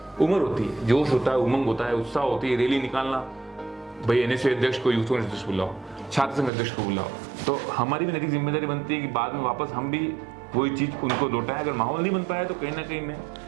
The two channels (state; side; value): drops out; left; at 6.5 s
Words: उम्र होती है, जोश होता है, उमंग होता है, उत्साह होती है, रैली निकालना, भाई एनएसए अध्यक्ष को, यूथ कांग्रेस अध्यक्ष बुलाओ, छात्र संघ अध्यक्ष को बुलाओ। तो हमारी भी नैतिक जिम्मेदारी बनती है कि बाद में वापस हम भी वही चीज़ उनको लौटाएं। अगर माहौल नहीं बन पाया तो कहीं ना कहीं मैं